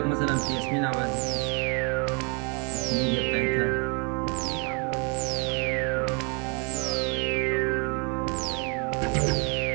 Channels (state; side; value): quieter; left; 34.6 dB